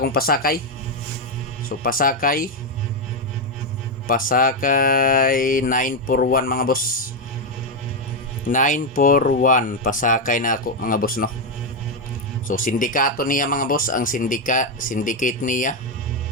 pasakay. So pasakay 941 mga boss. 941 pasakay na ako mga boss no. So sindikato niya mga boss, ang syndicate niya.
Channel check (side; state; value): both; normal; correlation 0.05